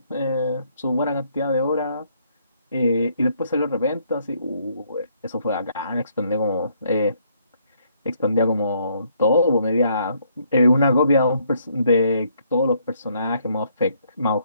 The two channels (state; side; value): inverted; both; correlation -0.69